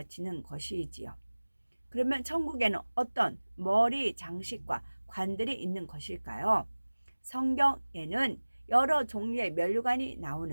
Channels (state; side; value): inverted; both; correlation -1.00